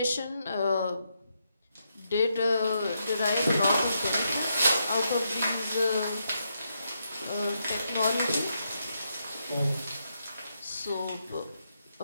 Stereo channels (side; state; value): both; inverted; correlation -0.81